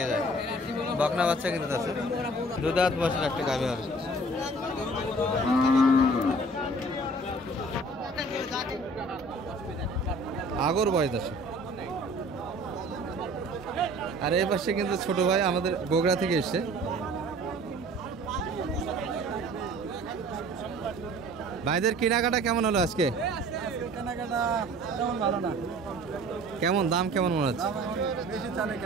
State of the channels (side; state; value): both; normal; correlation 0.49